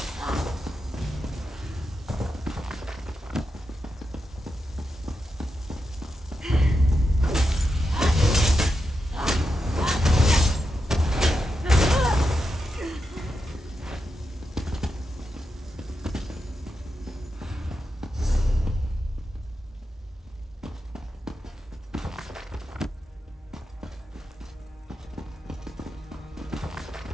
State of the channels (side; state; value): both; normal; correlation 0.87